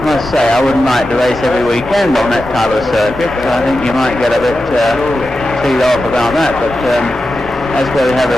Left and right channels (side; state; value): both; normal; correlation 0.91